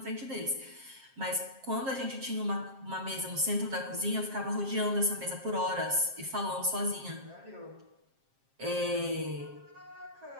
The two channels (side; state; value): left; late; 7.5 ms